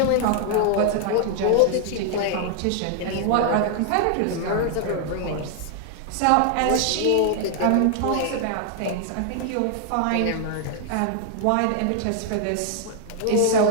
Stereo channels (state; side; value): different; both; correlation 0.00